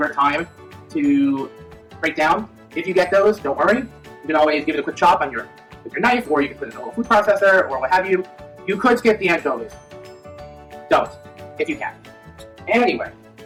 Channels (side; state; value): both; identical; correlation 1.00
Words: time to break down. If you get those, don't worry. You can always give it a quick chop with your knife, or you can put it in a little food processor, or what have you. You could skip the anchovies. Don't, if you can. Anyway,